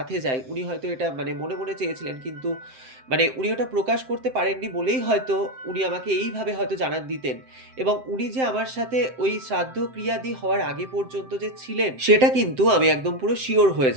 যাই, উনি হয়তো এটা মানে মনে, মনে চেয়েছিলেন। কিন্তু মানে উনি ওটা প্রকাশ করতে পারেননি বলেই হয়তো উনি আমাকে এইভাবে হয়তো জানান দিতেন। এবং উনি যে আমার সাথে ওই শ্রাদ্ধ ক্রিয়াদি হওয়ার আগে পর্যন্ত যে ছিলেন, সেটা কিন্তু আমি একদম পুরো সিওর হয়ে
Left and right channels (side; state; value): left; late; 7.7 ms